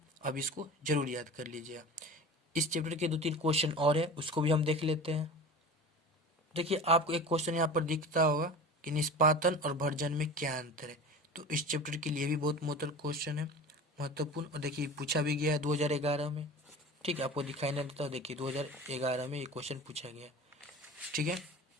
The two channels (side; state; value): both; normal; correlation 0.35